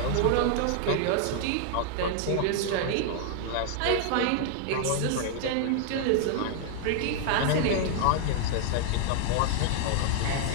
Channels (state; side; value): different; both; correlation 0.00